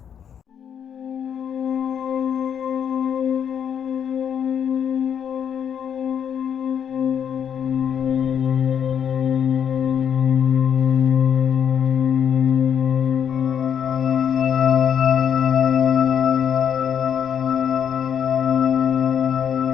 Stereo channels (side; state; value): right; quieter; 8.4 dB